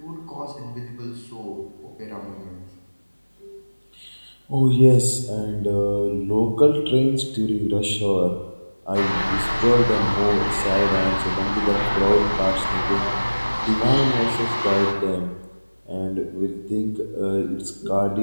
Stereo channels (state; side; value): inverted; both; correlation -1.00